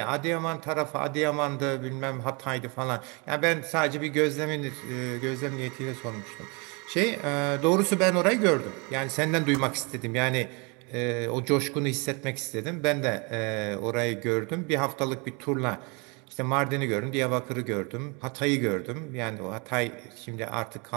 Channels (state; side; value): quieter; left; 30.9 dB